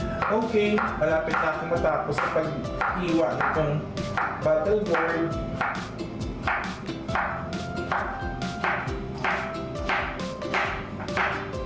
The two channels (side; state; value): both; identical; correlation 1.00